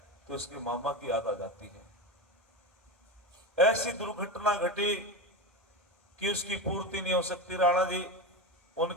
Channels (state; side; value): normal; both; correlation 0.20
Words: तो इसके मामा की याद आ जाती है। ऐसी दुर्घटना घटी कि उसकी पूर्ति नहीं हो सकती। राणा जी,